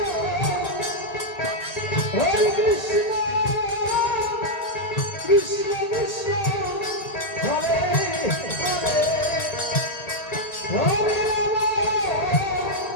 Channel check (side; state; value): right; late; 1.8 ms